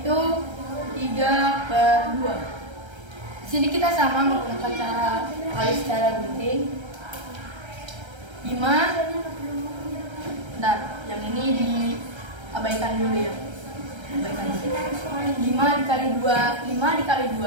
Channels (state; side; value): late; left; 1.3 ms